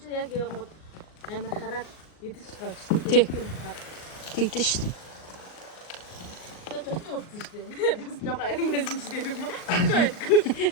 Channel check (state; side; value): late; right; 38 ms